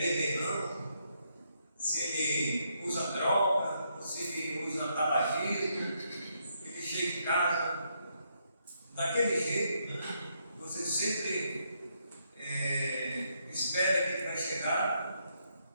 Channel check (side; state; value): both; inverted; correlation -0.76